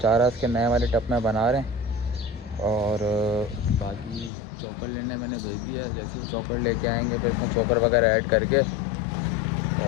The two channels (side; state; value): right; drops out; at 4.3 s